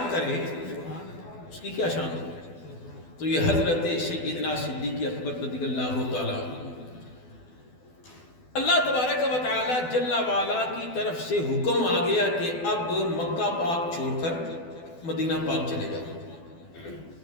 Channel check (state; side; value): late; right; 12 ms